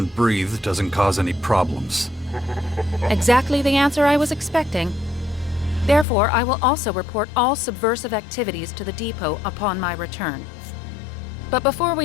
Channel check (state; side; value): drops out; right; at 6.1 s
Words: breathe doesn't cause any problems. Exactly the answer I was expecting. Therefore, I will also report all subversive activities to the depot upon my return. But before